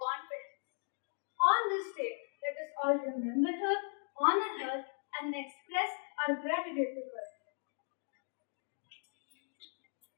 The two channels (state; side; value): silent; right; digital silence